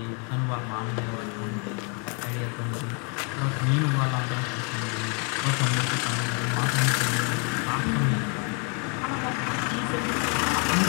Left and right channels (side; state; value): right; quieter; 37.1 dB